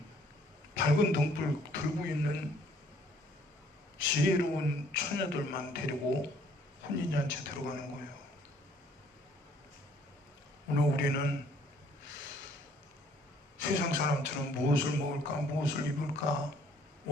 밝은 등불 들고 있는 지혜로운 처녀들만 데리고 혼인잔치에 들어가는 거예요. 오늘 우리는 세상 사람처럼 무엇을 먹을까, 무엇을 입을까,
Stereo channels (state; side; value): normal; both; correlation 0.61